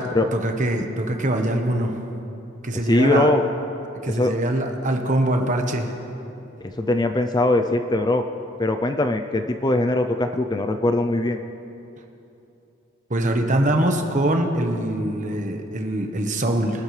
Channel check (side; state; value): both; normal; correlation 0.66